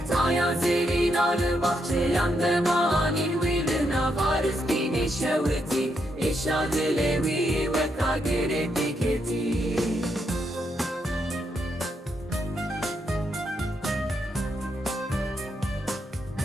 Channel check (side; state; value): both; normal; correlation 0.79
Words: zerin arı bahçe yandım anin Vilina varız bine şeveti İşadı levi ve kagire diketi